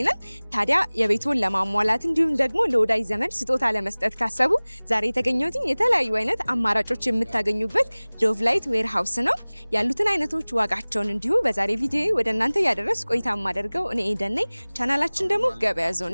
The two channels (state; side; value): inverted; both; correlation -1.00